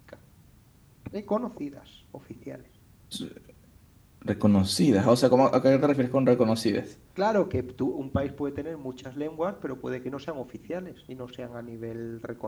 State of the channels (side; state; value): both; identical; correlation 1.00